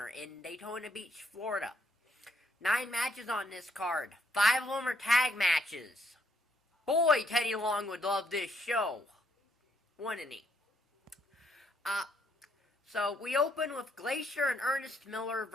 in Daytona Beach, Florida. 9 matches on this card. 5 of them are tag matches. Boy, Teddy Long would love this show. Wouldn't he? So we open with Glacier and Ernest Miller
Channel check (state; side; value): normal; both; correlation 0.71